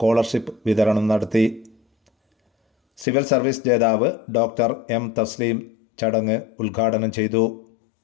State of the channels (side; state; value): right; drops out; at 3.1 s